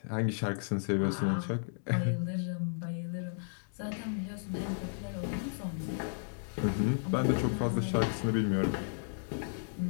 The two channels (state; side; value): silent; right; digital silence